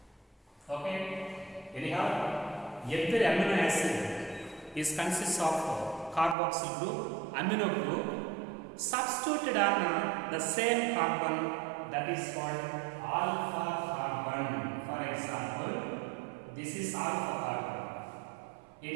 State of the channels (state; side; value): drops out; left; at 6.4 s